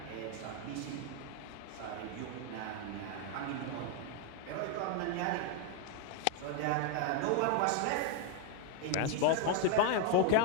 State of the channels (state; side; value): different; both; correlation 0.00